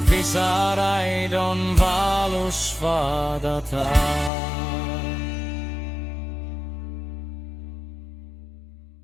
pisaraid on valus vaadata.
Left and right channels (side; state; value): right; drops out; at 4.3 s